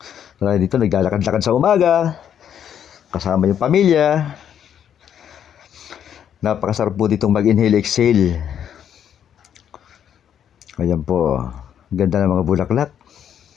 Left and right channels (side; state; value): right; quieter; 9.2 dB